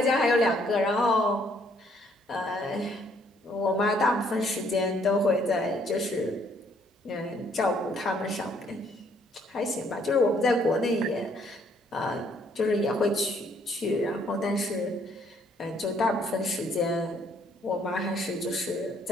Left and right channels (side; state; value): both; normal; correlation 0.66